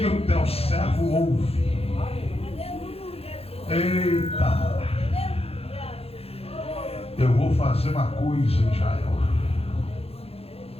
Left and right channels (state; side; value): late; right; 0.29 ms